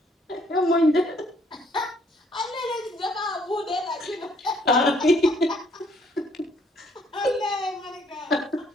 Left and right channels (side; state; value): both; normal; correlation 0.65